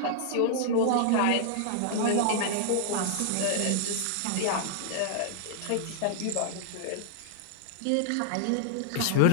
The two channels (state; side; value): different; both; correlation -0.01